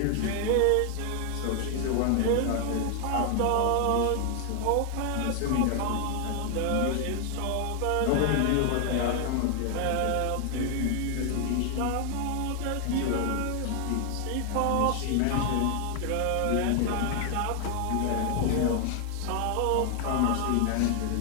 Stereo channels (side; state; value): both; different; correlation 0.00